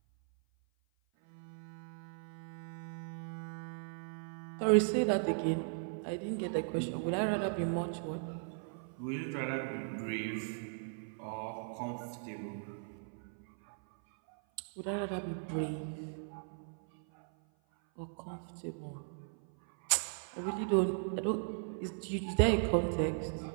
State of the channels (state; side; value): silent; left; 53 dB below the other